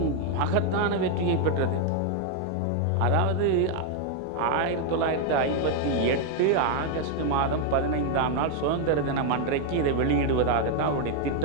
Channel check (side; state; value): both; different; correlation 0.00